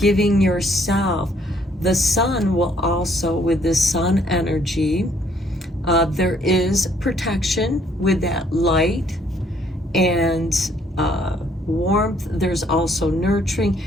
yourself. The Sun will also, with the Sun energy, there is protection with that light and warmth. There's also nurturing,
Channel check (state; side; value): normal; both; correlation 0.65